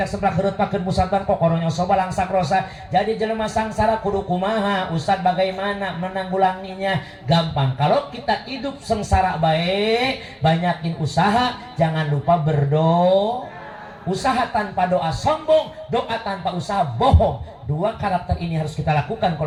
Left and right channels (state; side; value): identical; both; correlation 1.00